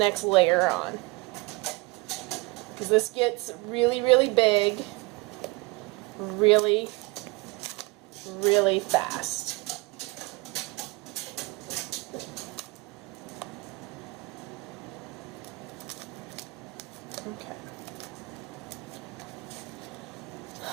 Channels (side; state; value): left; quieter; 25.0 dB